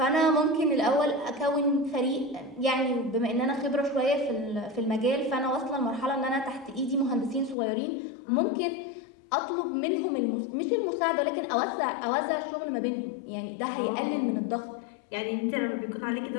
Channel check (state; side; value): drops out; right; at 7.6 s